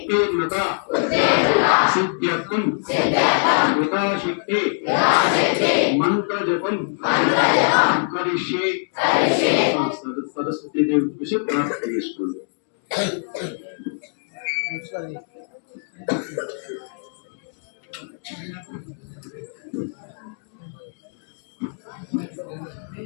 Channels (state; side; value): silent; right; 64 dB below the other